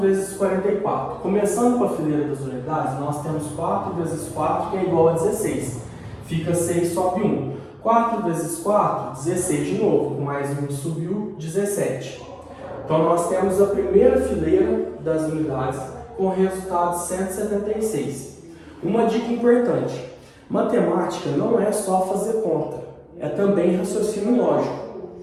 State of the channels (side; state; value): both; identical; correlation 1.00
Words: 44. Começando com a fileira das unidades, nós temos 4 vezes 4, que é igual a 16. Fica 6, sobe 1. 4 vezes 4, 16 de novo. Mais 1 subiu, 17. Então nós temos a primeira fileira das unidades com o resultado 176. Uma dica importante. Matemática não é só fazer conta, é também raciocínio lógico.